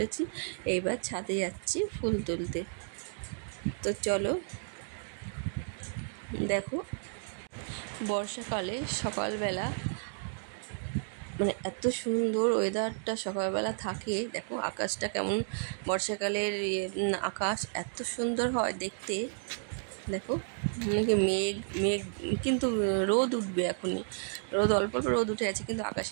এইবার ছাদে যাচ্ছি ফুল তুলতে। তো চলো, দেখো বর্ষাকালে সকালবেলা মানে এত সুন্দর ওয়েদারটা সকালবেলা থাকে। দেখো আকাশটা কেমন, বর্ষাকালের আকাশ এত সুন্দর হয় দেখতে। দেখো মানে মেঘ মেঘ কিন্তু রোদ উঠবে এখনই, রোদ অল্প অল্প রোদ উঠে আছে, কিন্তু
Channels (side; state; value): left; silent; digital silence